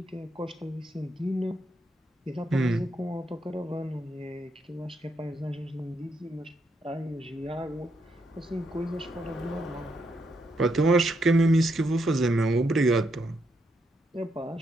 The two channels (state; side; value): normal; both; correlation 0.79